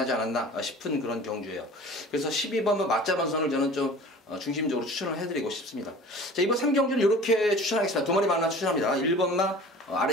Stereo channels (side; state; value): both; normal; correlation 0.43